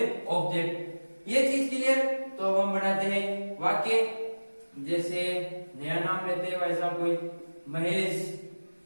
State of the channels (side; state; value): both; inverted; correlation -1.00